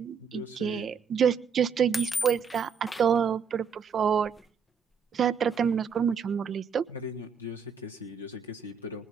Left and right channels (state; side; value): quieter; left; 6.4 dB